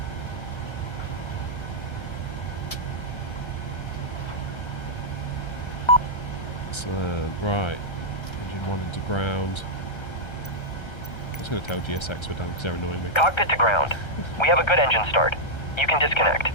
Excellent. Right. Engine 1 into ground. I was going to tell GSX we're done because they're annoying me. Cockpit to ground. We have a good engine start. You can disconnect.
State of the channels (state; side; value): late; right; 1.3 ms